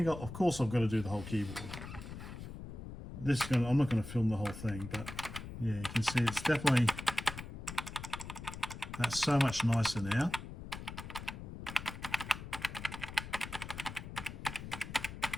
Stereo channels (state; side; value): noise; left; rumble, 10 dB below the sound